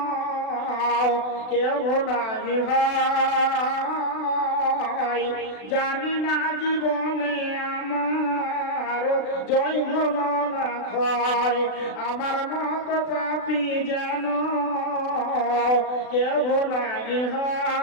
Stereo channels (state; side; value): late; right; 36 ms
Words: কেউ নাই হয়, জানি না জীবনে আমার জয় হলো না ক্ষয়, আমার মত পাপী যেন কেউ নাই